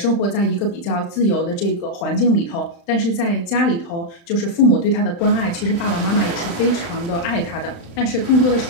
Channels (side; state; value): right; late; 35 ms